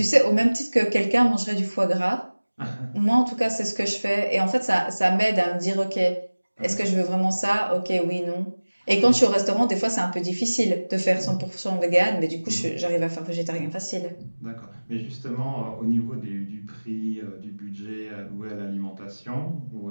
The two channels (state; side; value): inverted; both; correlation -1.00